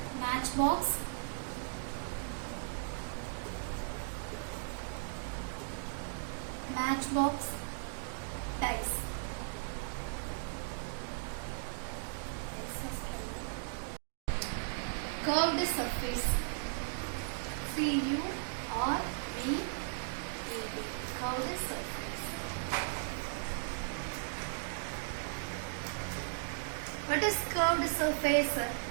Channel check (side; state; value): left; silent; digital silence